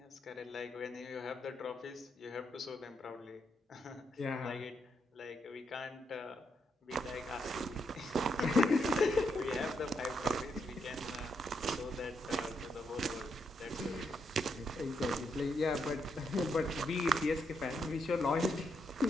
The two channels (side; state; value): both; normal; correlation 0.79